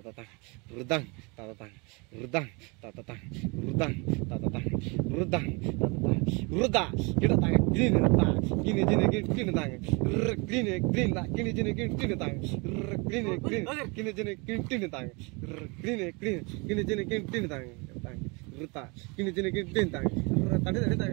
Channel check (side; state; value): left; quieter; 29.3 dB